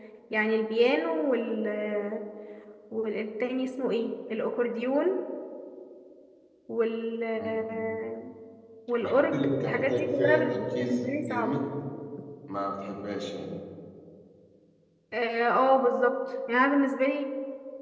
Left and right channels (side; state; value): both; identical; correlation 1.00